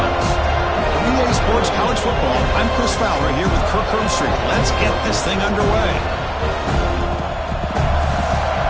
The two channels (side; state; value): both; identical; correlation 1.00